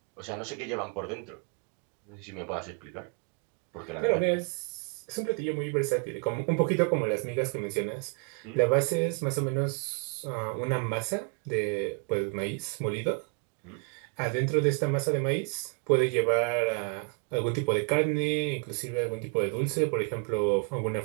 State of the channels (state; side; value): quieter; left; 38.4 dB